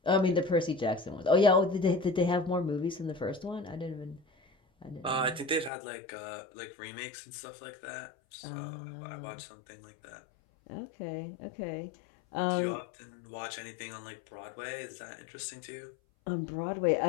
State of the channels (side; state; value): right; drops out; at 5.7 s